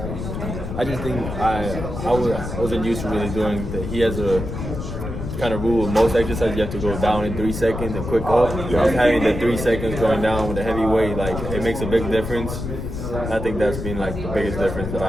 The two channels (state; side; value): noise; left; rumble, 6 dB below the sound